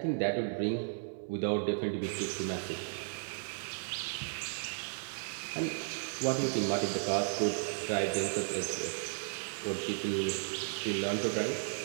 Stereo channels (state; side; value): silent; left; digital silence